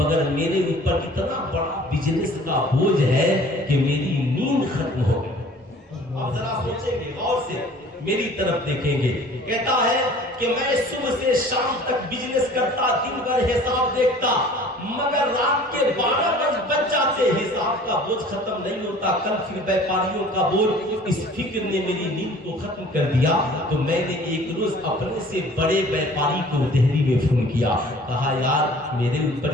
میرے اوپر اتنا بڑا بزنس کا بوجھ ہے کہ میری نیند ختم ہو گئی۔ آپ ذرا سوچیں گے، غور سے میری طرف دیکھیں گے، کہتا ہے کہ میں صبح سے شام تک بزنس کرتا، دن بھر حساب دیکھتا، مگر رات کے 12 بج جاتے، حساب کا بوجھ ختم نہیں ہوتا، کل پھر بیپاریوں کا بوجھ۔ اس فکر نے میری نیند کو ختم کر دیا، تو میں نے ایک روز اپنے سے بڑے بیپاری کو دہلی میں فون کیا، کہا یار میرے اوپر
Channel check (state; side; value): normal; both; correlation 0.49